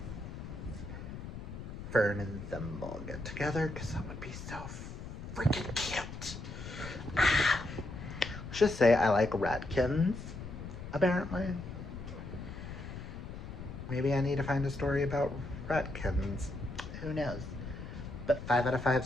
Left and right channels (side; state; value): left; noise; rumble, 9 dB below the sound